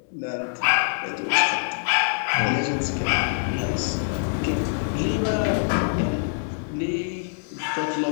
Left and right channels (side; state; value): right; silent; digital silence